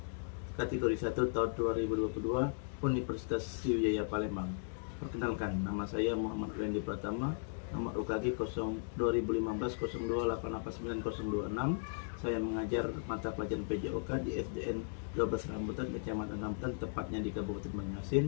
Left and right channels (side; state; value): right; silent; digital silence